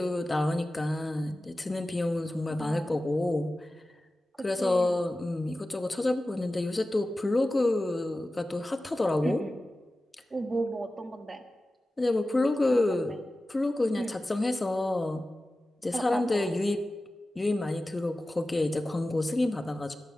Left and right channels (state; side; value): normal; both; correlation 0.95